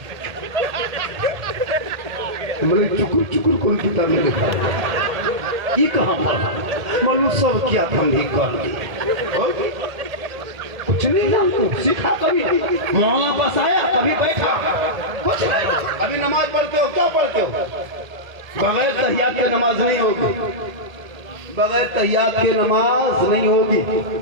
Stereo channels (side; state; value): left; late; 1.8 ms